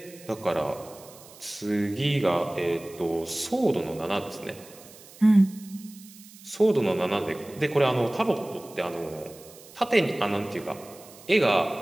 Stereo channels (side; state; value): right; noise; hiss, 21 dB below the sound